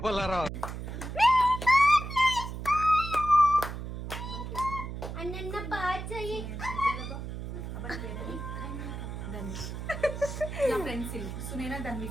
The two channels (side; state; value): right; noise; hum, 7 dB below the sound